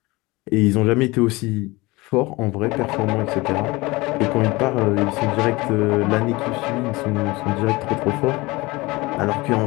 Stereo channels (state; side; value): quieter; right; 22.4 dB